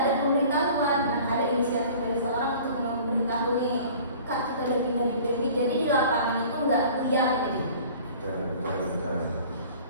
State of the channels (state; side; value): inverted; both; correlation -0.47